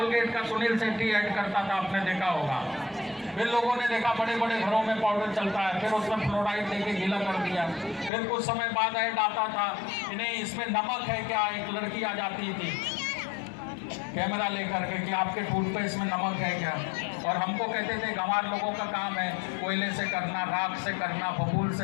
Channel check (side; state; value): right; drops out; at 8.1 s